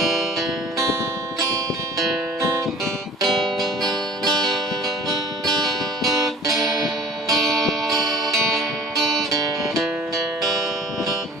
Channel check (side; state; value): both; normal; correlation 0.48